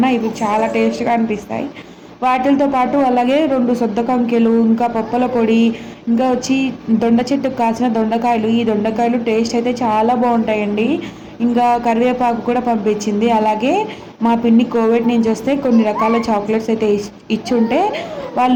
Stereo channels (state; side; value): identical; both; correlation 1.00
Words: ఇవి చాలా టేస్ట్గా అనిపిస్తాయి. వాటితో పాటు అలాగే 2 సొద్ద కంకెలు, ఇంకా పప్పల పొడి, ఇంకా వచ్చి దొండ చెట్టుకు కాసిన దొండకాయలు. ఈ దొండకాయలు టేస్ట్ అయితే చాలా బాగుంటాయండి. ఇంకా కరివేపాకు కూడా పంపించింది. అలాగే మా పిన్ని కోవిడ్ నుంచి వస్తే కొన్ని రకాల చాక్లెట్స్ అయితే ఇచ్చుంటే